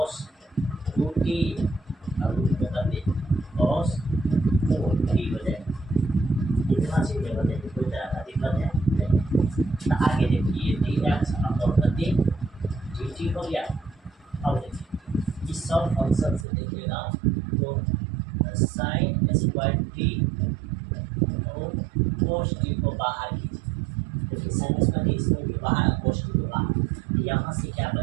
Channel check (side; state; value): left; drops out; at 16.4 s